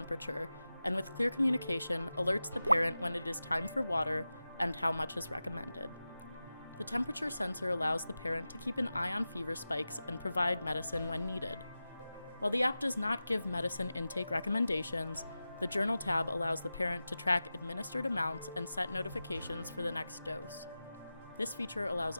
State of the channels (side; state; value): both; inverted; correlation -0.94